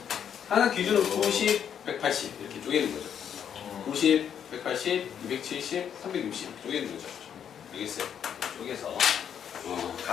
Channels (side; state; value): right; quieter; 8.6 dB